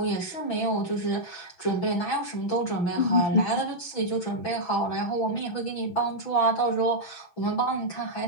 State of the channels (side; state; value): right; late; 6.0 ms